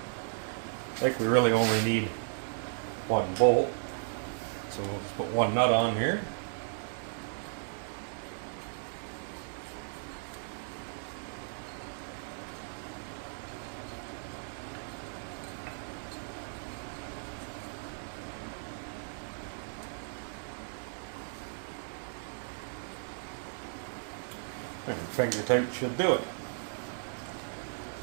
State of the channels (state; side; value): silent; left; digital silence